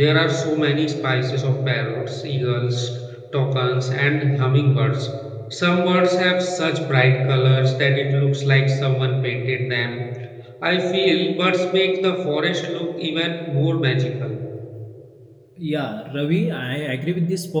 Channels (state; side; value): identical; both; correlation 1.00